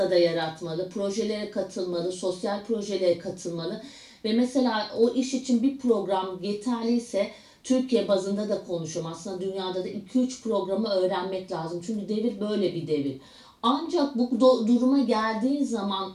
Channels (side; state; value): both; identical; correlation 1.00